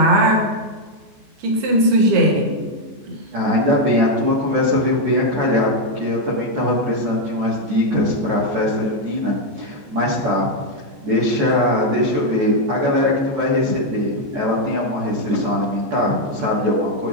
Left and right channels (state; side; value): late; left; 14 ms